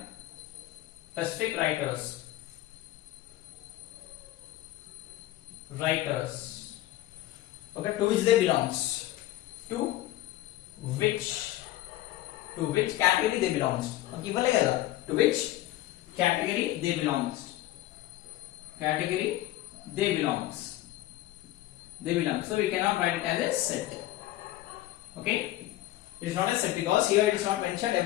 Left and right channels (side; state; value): right; quieter; 15.3 dB